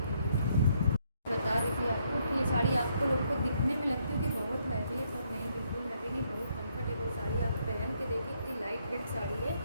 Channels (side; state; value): both; inverted; correlation -0.73